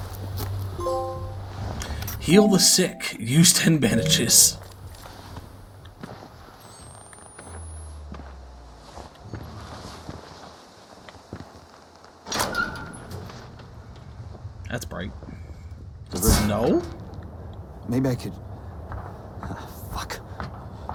Heal the sick. Use 10 bandages. That's bright. Snow? Maybe I could... fuck.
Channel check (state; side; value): identical; both; correlation 1.00